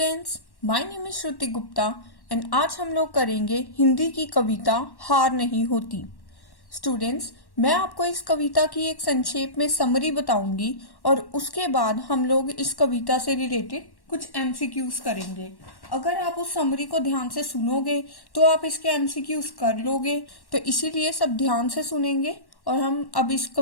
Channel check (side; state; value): right; late; 1.1 ms